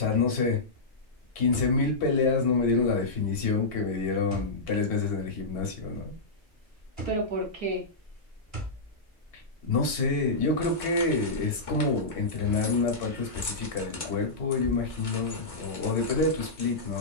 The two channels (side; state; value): right; quieter; 3.2 dB